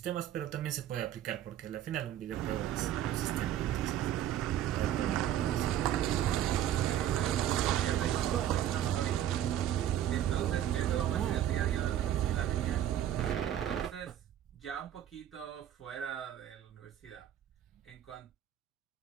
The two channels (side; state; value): left; quieter; 11.4 dB